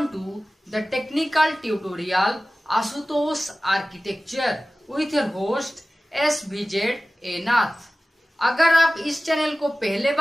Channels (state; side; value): normal; both; correlation 0.96